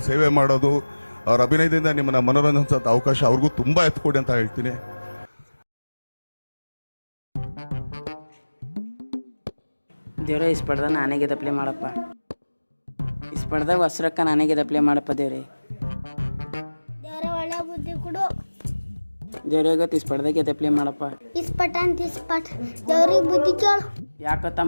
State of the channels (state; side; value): inverted; both; correlation -1.00